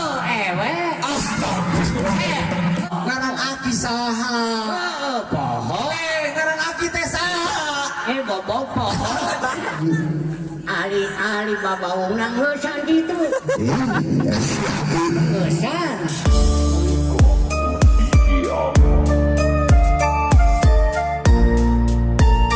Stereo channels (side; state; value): both; identical; correlation 1.00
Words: ewe. Astagfirullah. Ngarang aki saha? Poho. Ngarang aki teh saha? Bobo poho. Ali babaung nang leusan gitu. Leusan.